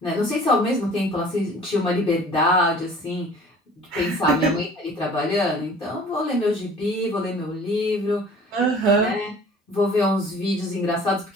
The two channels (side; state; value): both; normal; correlation 0.48